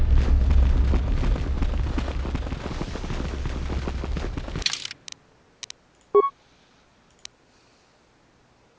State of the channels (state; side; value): identical; both; correlation 1.00